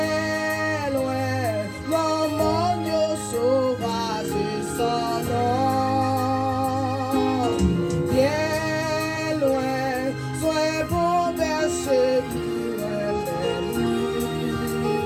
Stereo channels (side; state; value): both; identical; correlation 1.00